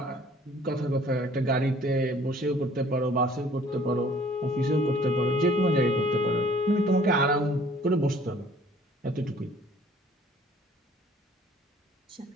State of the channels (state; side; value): normal; both; correlation 0.55